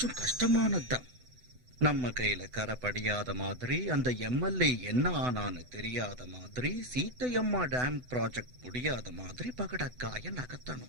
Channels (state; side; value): late; left; 8.0 ms